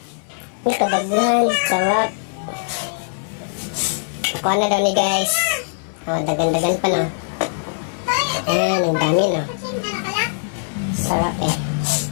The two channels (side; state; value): right; silent; 57 dB below the other